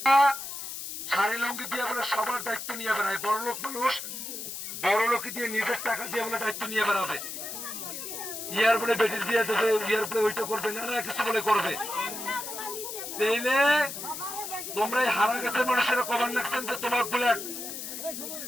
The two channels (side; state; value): left; noise; hiss, 7 dB below the sound